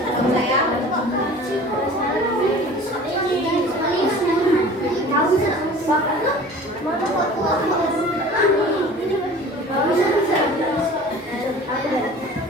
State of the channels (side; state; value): both; normal; correlation 0.43